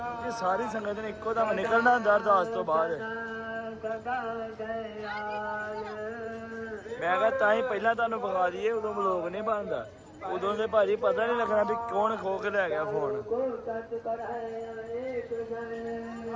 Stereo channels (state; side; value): identical; both; correlation 1.00